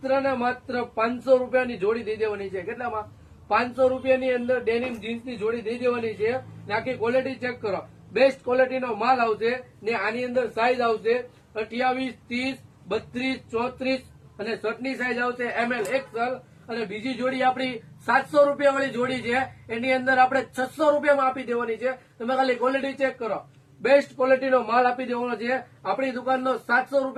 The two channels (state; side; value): identical; both; correlation 1.00